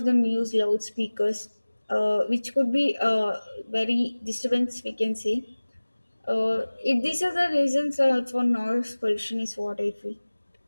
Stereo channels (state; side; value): inverted; both; correlation -1.00